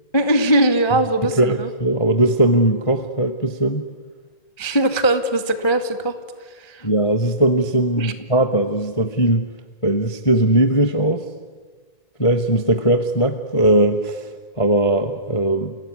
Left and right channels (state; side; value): late; right; 1.3 ms